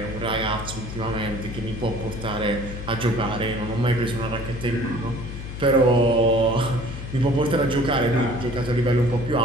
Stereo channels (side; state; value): left; noise; hum, 8 dB below the sound